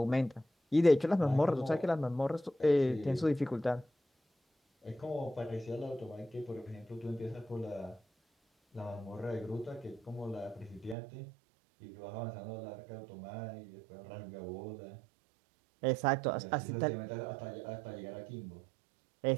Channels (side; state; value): left; drops out; at 11.0 s